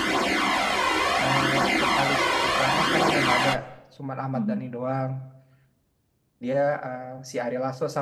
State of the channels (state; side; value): identical; both; correlation 1.00